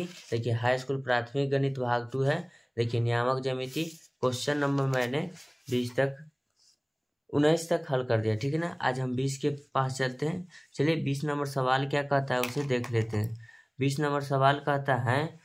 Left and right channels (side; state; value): both; identical; correlation 1.00